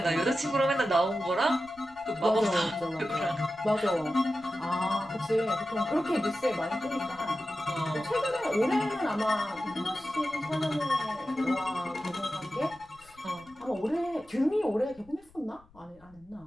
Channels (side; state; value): left; noise; rumble, 27 dB below the sound